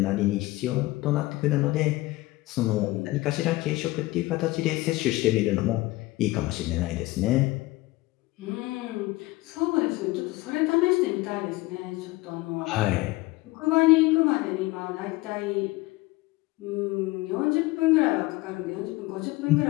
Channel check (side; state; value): right; quieter; 20.0 dB